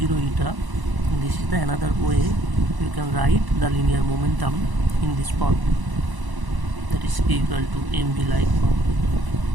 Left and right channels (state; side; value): late; left; 1.0 ms